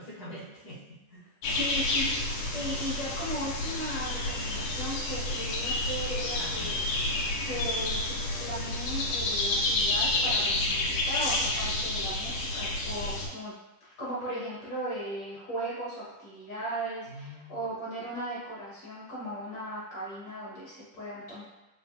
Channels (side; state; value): right; late; 10 ms